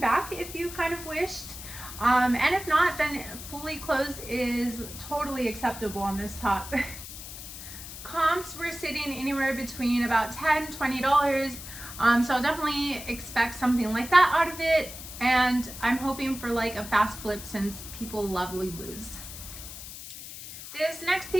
if you kind of wished, and if not, then fully closed is totally acceptable on this top. Comps were sitting anywhere between about $10 $20, so I'll definitely expect something like that out of it, and I'm hoping for like a fast flip since people love Lulu's. This next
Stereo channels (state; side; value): noise; left; hiss, 12 dB below the sound